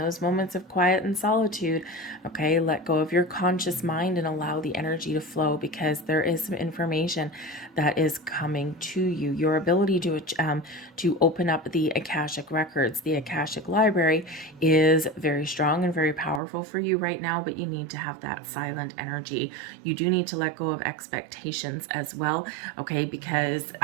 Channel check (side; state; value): left; drops out; at 16.4 s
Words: moments of quiet and solitude, okay, let go of your conscious mind and allow the energy to flow, because there is some information that is coming to you. Your ability to open up the Akashic records, the Akashic Library, is very strong and very powerful for you right now, but you need to have that silent energy. You do need to let go of expectations as well, okay, because